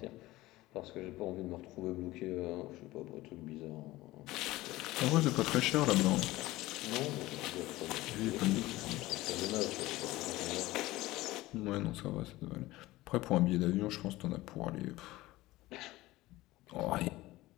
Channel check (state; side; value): quieter; right; 18.1 dB